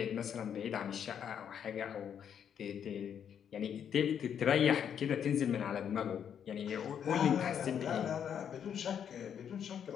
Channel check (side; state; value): right; quieter; 8.5 dB